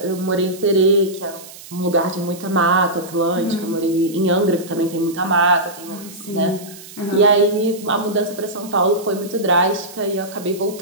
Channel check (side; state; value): right; noise; hiss, 17 dB below the sound